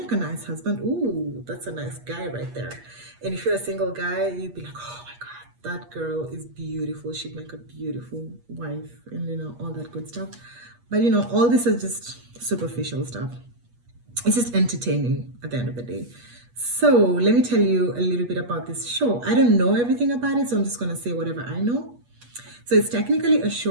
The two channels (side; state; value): left; late; 8.4 ms